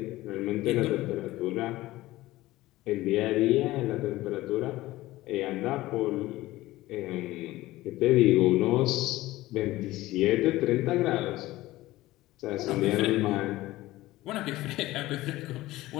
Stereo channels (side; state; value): right; quieter; 17.4 dB